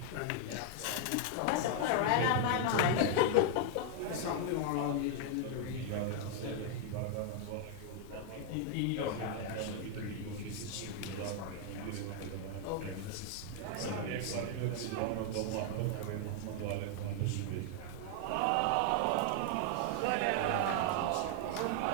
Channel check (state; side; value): different; both; correlation 0.00